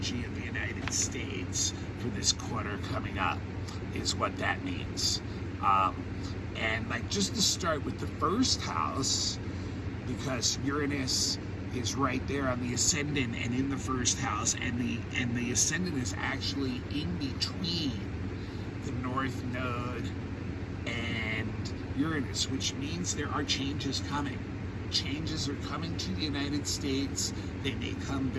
of the United States for this quarter coming up, is what that means. And like, just to start with the first house, because Uranus is right there on the ascendant and in the first house, and the ascendant is actually in between the North Node and Uranus, which means there are changes coming. Changes are coming to the United States. They may come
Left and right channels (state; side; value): identical; both; correlation 1.00